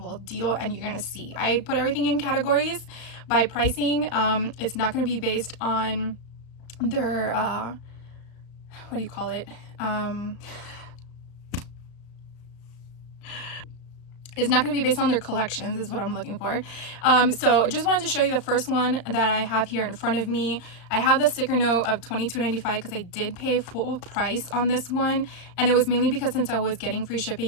deal. And you're going to see, I put everything in categories by pricing. It's not going to be based on their, what do you call it? It's not going to be based on their collections, is what I'm looking for. So just wanted to show you the first one that I have here in front of me. I have the sticker note of $22.95 because I did pay full price on this one. And it was mainly because since I was getting free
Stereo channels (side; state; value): right; late; 35 ms